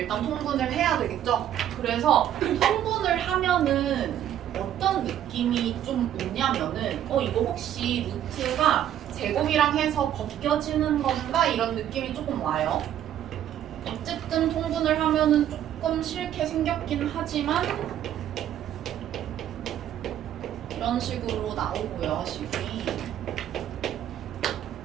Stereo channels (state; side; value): quieter; left; 11.0 dB